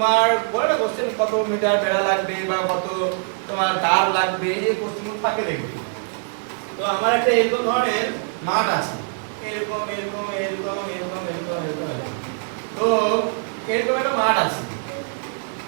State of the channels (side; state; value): left; silent; 62 dB below the other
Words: বলে না কোশ্চেন কত মিটার বেড়া লাগবে বা কত তোমার তার লাগবে, এই কোশ্চেনগুলো থাকে দেখবে। তো আমার একটা এরকম ধরনের মাঠ আছে, এরকম এরকম এরকম এরকম এরকম এরকম এরকম। তো এরকম একটা মাঠ আছে,